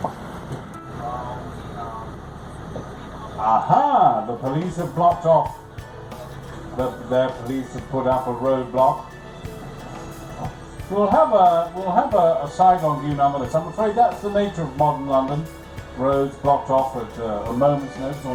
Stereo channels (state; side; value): identical; both; correlation 1.00